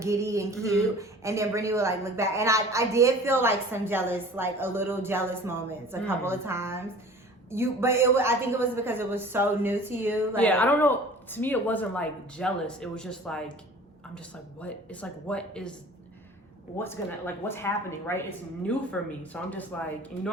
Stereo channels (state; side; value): normal; both; correlation 0.44